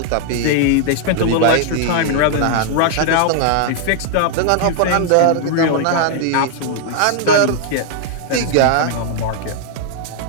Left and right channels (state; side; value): different; both; correlation -0.01